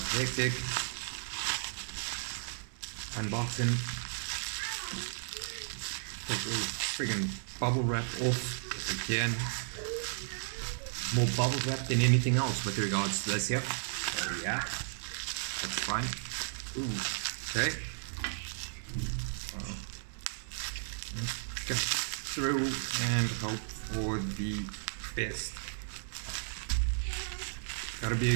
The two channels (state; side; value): silent; left; 55 dB below the other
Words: hectic. Unboxing. Take the friggin' bubble wrap off if I can. More bubble wrap than anything else with regards to this here. So yeah, that's fine. Ooh, okay. Let's get through and hope for the best. Gotta be